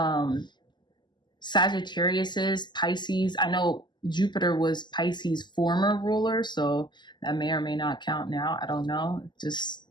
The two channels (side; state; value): right; late; 0.21 ms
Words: Sagittariuses, Pisces. I know Jupiter was Pisces' former ruler, so that may or may not count now. I don't know. Just